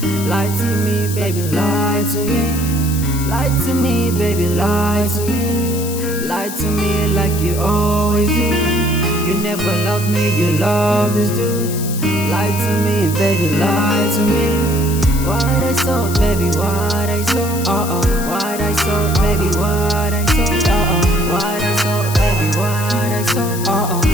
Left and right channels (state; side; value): noise; left; hiss, 9 dB below the sound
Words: Lie to me, baby, lie to me. Lie to me, baby, lie to me. Lie to me like you always do. You never loved me, you always do. Lie to me, baby, lie to me. What I saw, baby, what I saw. What I saw, baby, what I saw. What I saw, baby, what I saw.